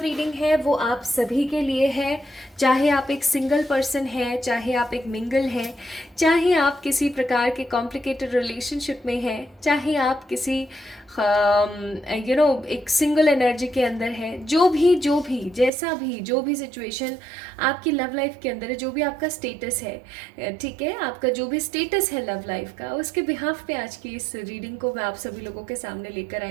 रीडिंग है वो आप सभी के लिए है। चाहे आप एक सिंगल पर्सन है, चाहे आप एक मिंगल हैं, चाहे आप किसी प्रकार के कॉम्प्लिकेटेड रिलेशनशिप में हैं, चाहे आप किसी एक सिंगल एनर्जी के अंदर है, जो भी जैसा भी जो भी सिचुएशन आपकी लव लाइफ के अंदर है, जो भी आपका स्टेटस है, ठीक है, आपका जो भी स्टेटस है लव लाइफ का, उसके बिहाफ पे आज की इस रीडिंग को मैं आप सभी लोगों के सामने लेकर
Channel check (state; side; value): drops out; left; at 15.7 s